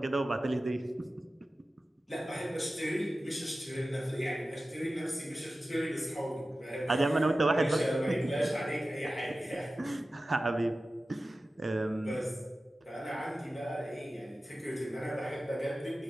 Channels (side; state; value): both; normal; correlation 0.95